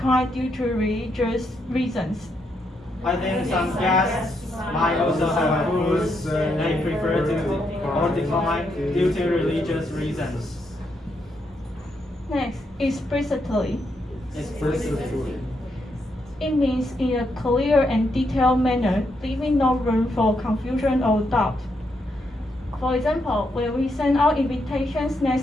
due to religious reasons. I think some guests might also have foods they prefer to or decline due to religious reasons. Next, explicitly. Explicitly. It means in a clear and detailed manner, leaving no room for confusion or doubt. For example, when we send out invitations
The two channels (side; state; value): both; normal; correlation 0.79